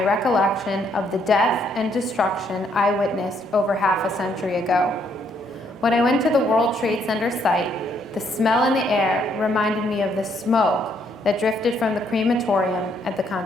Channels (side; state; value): both; normal; correlation 0.70